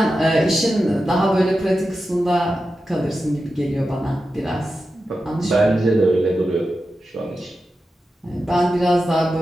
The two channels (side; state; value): both; normal; correlation 0.91